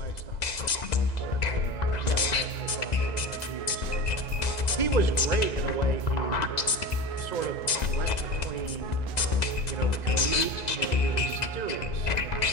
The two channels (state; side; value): late; right; 2.0 ms